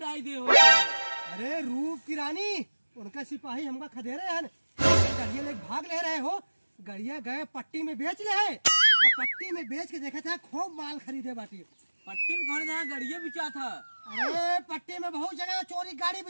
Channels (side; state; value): both; inverted; correlation -1.00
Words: दे हो। अरे रूप की रानी उनका सिपाही हमका खदेरे हैं, गड़िया ले भाग ले रहे हो। गड़िया गए पट्टी में बेच ले है और पट्टी में बेच के देखा था खूब माल खरीदे बाटी। पट्टी में कौन जहाँ गड़िया बिचा था? अरे पट्टी में बहुत जगह चोरी गाड़ी